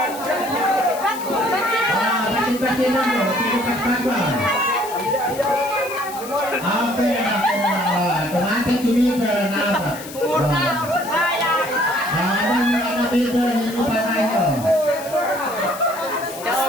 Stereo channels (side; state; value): left; noise; hiss, 14 dB below the sound